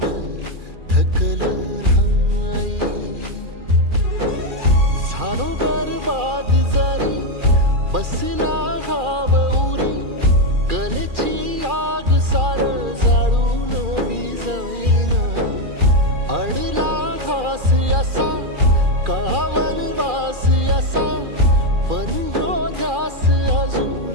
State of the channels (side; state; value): left; late; 2.4 ms